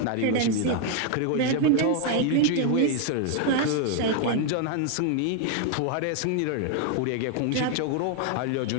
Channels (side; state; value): both; different; correlation 0.00